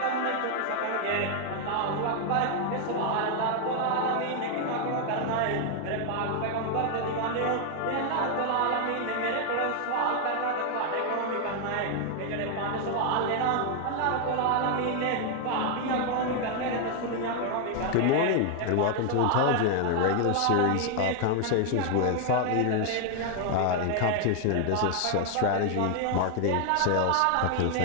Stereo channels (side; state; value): both; different; correlation 0.00